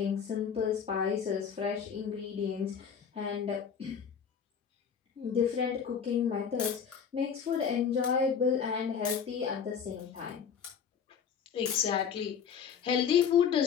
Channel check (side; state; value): right; quieter; 7.1 dB